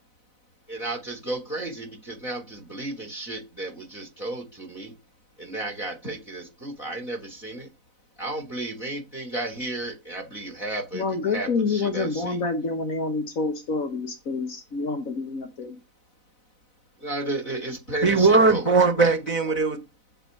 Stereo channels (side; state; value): right; late; 4.0 ms